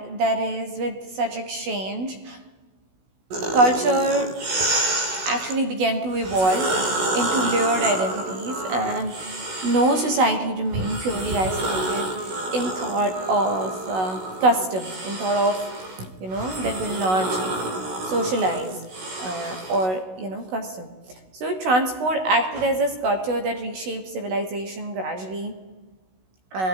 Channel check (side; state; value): left; late; 16 ms